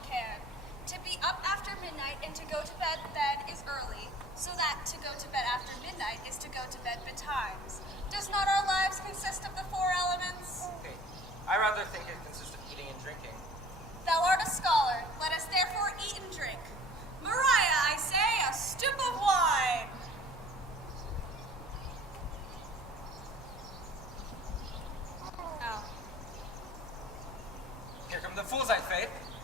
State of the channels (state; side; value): normal; both; correlation 0.48